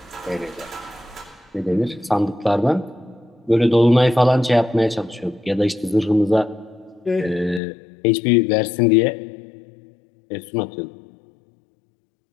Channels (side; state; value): right; drops out; at 7.6 s